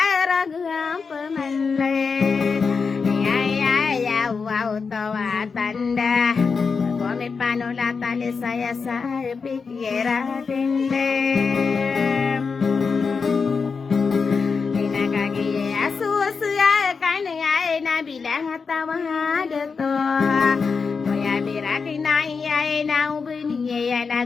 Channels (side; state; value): right; quieter; 5.2 dB